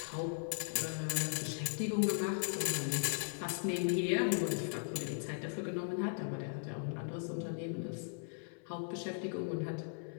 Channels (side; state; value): right; silent; 52 dB below the other